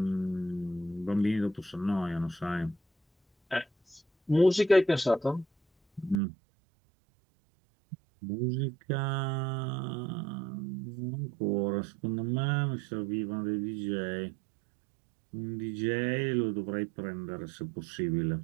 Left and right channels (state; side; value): drops out; left; at 6.2 s